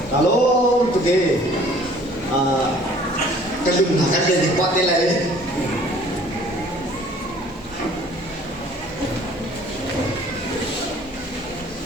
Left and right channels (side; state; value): both; normal; correlation 0.54